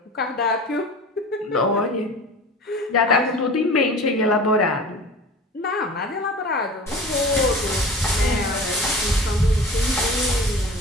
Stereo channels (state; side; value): normal; both; correlation 0.38